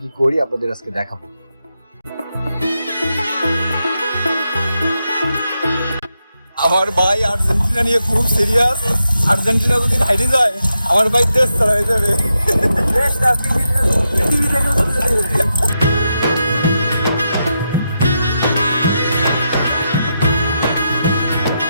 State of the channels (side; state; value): both; inverted; correlation -0.85